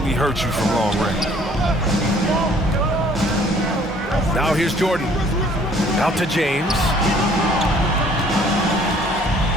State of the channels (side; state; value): both; normal; correlation 0.57